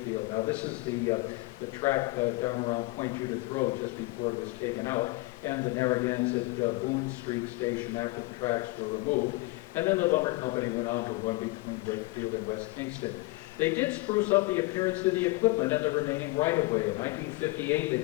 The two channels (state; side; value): quieter; right; 22.2 dB